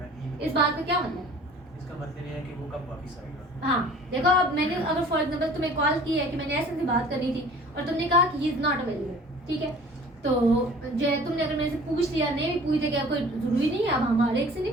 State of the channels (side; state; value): both; normal; correlation 0.47